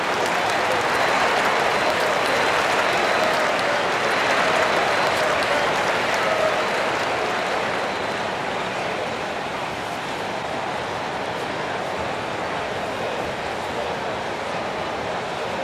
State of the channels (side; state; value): both; identical; correlation 1.00